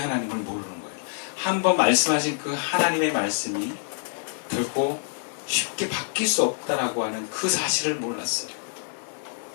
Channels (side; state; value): right; silent; 61 dB below the other